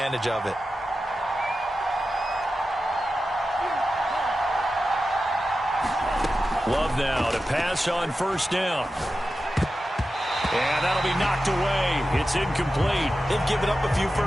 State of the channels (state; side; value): normal; both; correlation 0.92